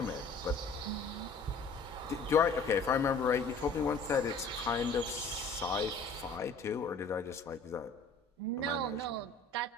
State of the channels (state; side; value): quieter; right; 3.7 dB